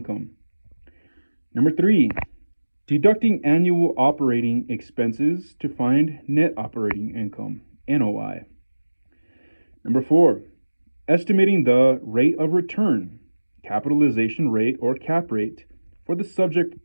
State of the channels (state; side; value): inverted; both; correlation -1.00